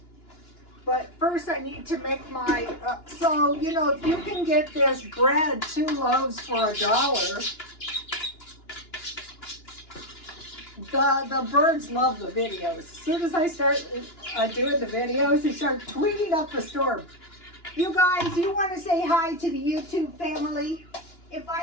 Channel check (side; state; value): right; late; 2.9 ms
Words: But first I need to make my, so you know, if you can get this bread 2 loaves for $1, the birds love the videos. As soon as I start doing the videos, they start tweeting up the storm. You guys, you want to say hi to the YouTube family? If